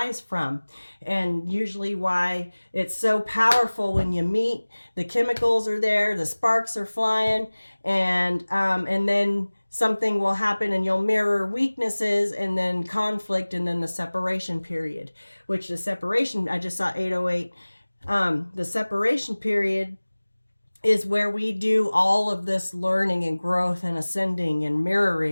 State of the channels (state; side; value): inverted; both; correlation -1.00